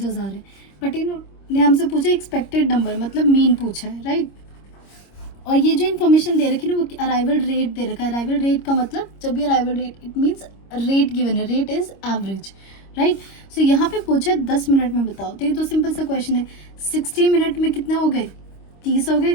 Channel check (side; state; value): right; late; 26 ms